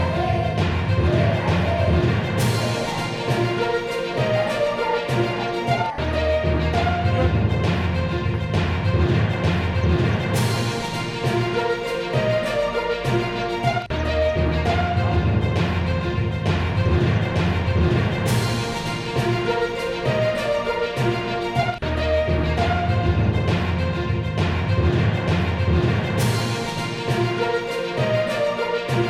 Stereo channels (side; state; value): both; identical; correlation 1.00